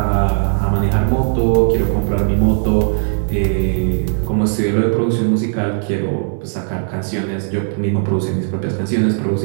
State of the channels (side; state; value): left; silent; digital silence